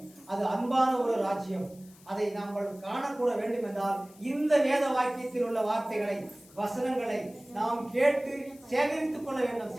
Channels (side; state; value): left; noise; hiss, 25 dB below the sound